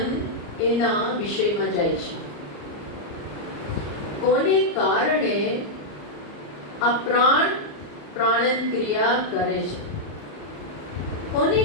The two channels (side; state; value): right; late; 34 ms